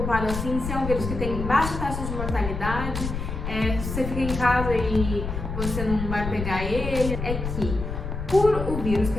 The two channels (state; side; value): noise; left; rumble, 5 dB below the sound